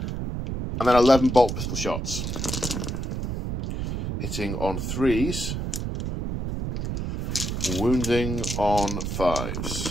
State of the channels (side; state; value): right; noise; rumble, 3 dB below the sound